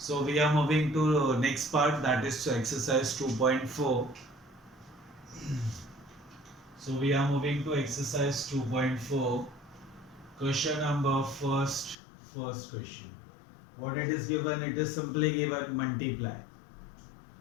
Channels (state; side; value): drops out; right; at 12.0 s